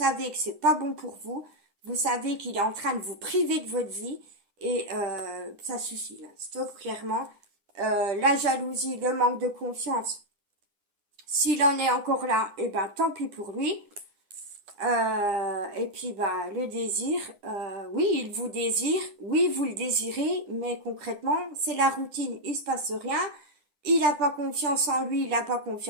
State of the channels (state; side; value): late; left; 10 ms